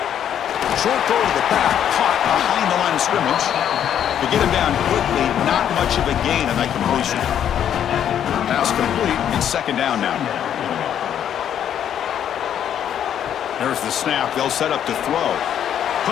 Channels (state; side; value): quieter; right; 9.6 dB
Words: Short throw to the back. Caught behind the line of scrimmage. To get him down quickly, not much of a gain on that completion. Pass complete. It's 2nd down now. There's the snap. They'll set up to throw.